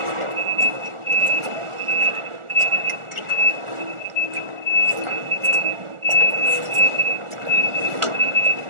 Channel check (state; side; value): late; left; 1.4 ms